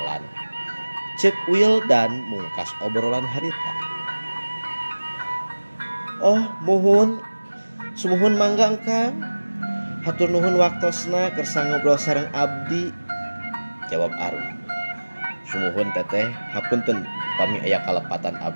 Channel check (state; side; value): inverted; both; correlation -1.00